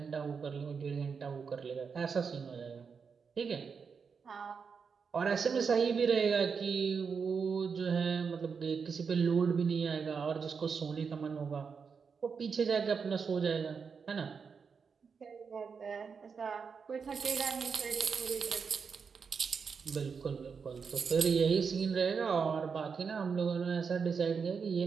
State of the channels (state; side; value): quieter; left; 5.8 dB